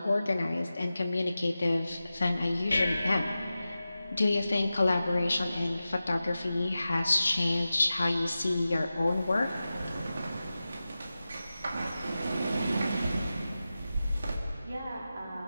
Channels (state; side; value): inverted; both; correlation -0.94